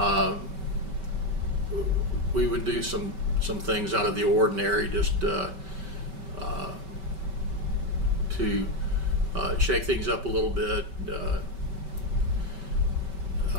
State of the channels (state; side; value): late; left; 5.2 ms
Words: We would do some things out of the ordinary, just to shake things up a little bit.